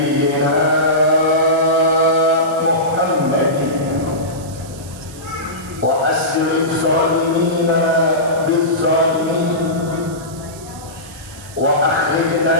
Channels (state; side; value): noise; right; hiss, 18 dB below the sound